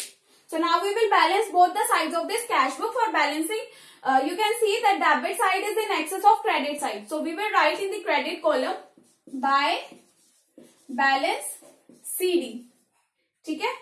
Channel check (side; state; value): both; identical; correlation 1.00